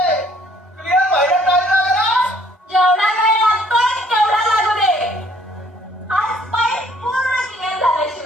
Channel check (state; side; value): normal; both; correlation 0.61